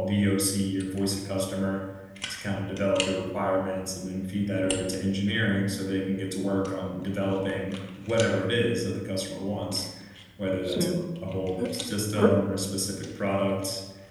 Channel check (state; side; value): identical; both; correlation 1.00